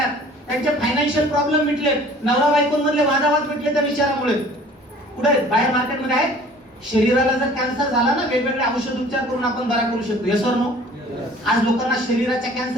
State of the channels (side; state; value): both; normal; correlation 0.50